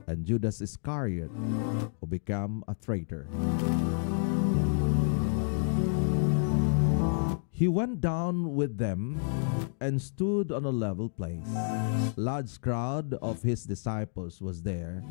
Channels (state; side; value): silent; right; digital silence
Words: and Judas Iscariot, who became a traitor. He went down with them and stood on a level place. A large crowd of his disciples was there,